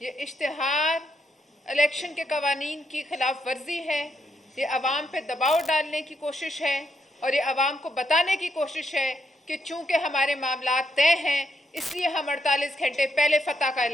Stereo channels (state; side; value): normal; both; correlation 0.78